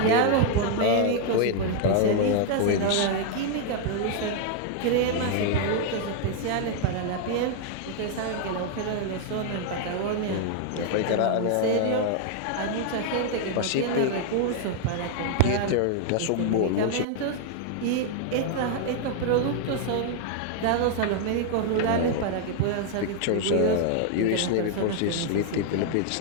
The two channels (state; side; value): different; both; correlation 0.00